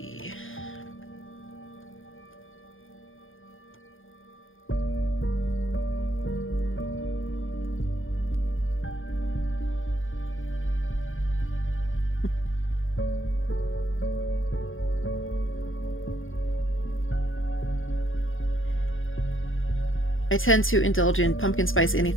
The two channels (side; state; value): right; late; 0.59 ms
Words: I tend to indulge in pumpkin spice